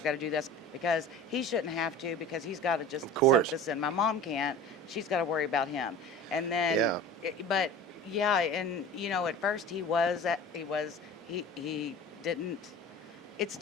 got to do this because he shouldn't have to, because he's got to just Of soak course. this in. My mom can't. She's got to worry about him. And then, Yeah. but yeah, and at first he didn't. It's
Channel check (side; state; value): both; normal; correlation 0.38